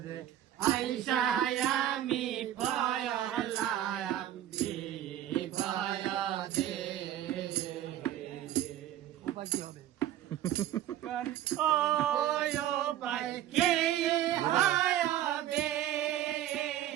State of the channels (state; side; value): quieter; left; 12.1 dB